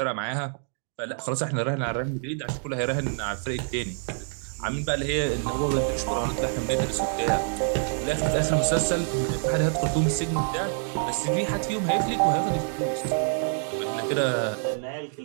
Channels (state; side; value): silent; left; 60 dB below the other